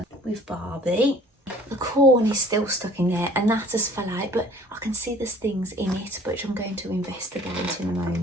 with Barbie. The corn is still stuck in there and that has fell out, but I can see there's things in it which I'm going to investigate in a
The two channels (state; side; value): normal; both; correlation 0.52